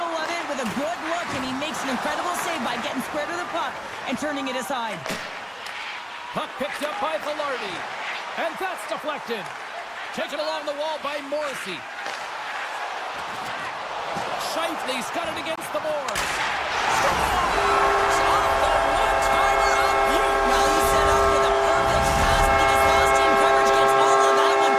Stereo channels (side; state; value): both; identical; correlation 1.00